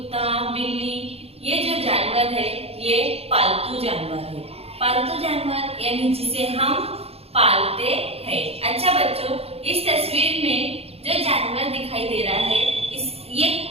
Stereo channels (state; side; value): late; left; 0.29 ms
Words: बिल्ली, ये जो जानवर है ये पालतू जानवर है। पालतू जानवर यानी जिसे हम पालते हैं। अच्छा बच्चों, इस तस्वीर में जो जानवर दिखाई दे रहा है ये